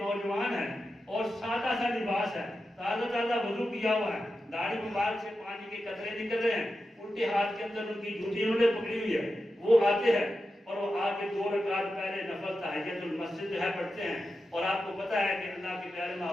ہے اور سادہ سا لباس ہے، تازہ وضو کیا ہوا ہے، داڑھی مبارک سے پانی کے قطرے نکل رہے ہیں، الٹے ہاتھ کے اندر ان کی جوتی انہوں نے پکڑی ہوئی ہے۔ وہ آتے ہیں اور وہ آ کے 2 رکعت پہلے نفل تحیۃ المسجد جو ہے پڑھتے ہیں، اور آپ کو پتہ ہے کہ اللہ کے پیارے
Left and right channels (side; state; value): both; normal; correlation 0.90